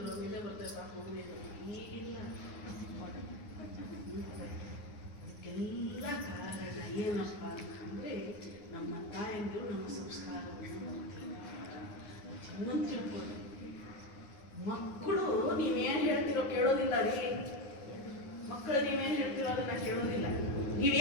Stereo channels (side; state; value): right; late; 9.7 ms